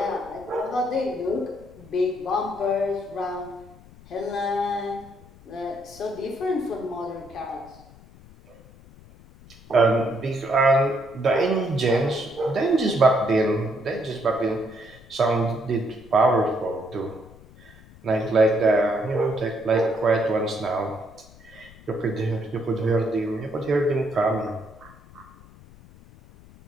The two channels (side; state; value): left; noise; rumble, 22 dB below the sound